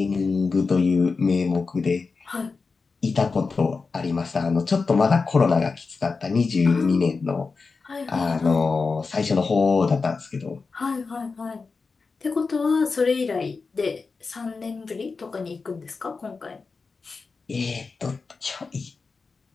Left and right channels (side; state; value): right; quieter; 4.5 dB